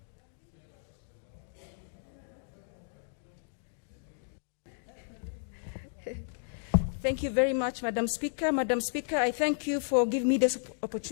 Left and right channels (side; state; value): right; silent; digital silence